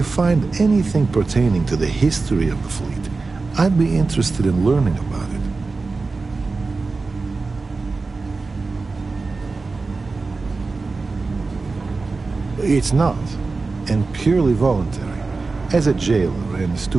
find anything pertaining to the history of the fleet, I'd be interested in learning about it. It's not, and purely voluntary. As a jailer and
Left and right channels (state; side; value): quieter; left; 3.9 dB